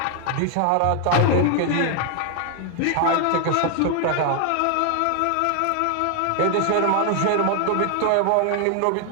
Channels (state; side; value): different; both; correlation 0.00